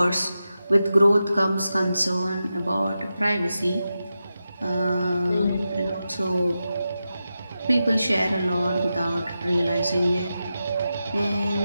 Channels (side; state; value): both; inverted; correlation -0.91